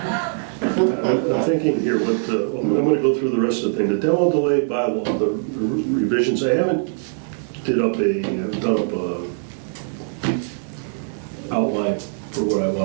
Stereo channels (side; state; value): left; silent; digital silence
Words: I'm thinking here, I'm going to go through the rest of the thing. The demo delay bylaw, the revisions, I haven't done up a outline for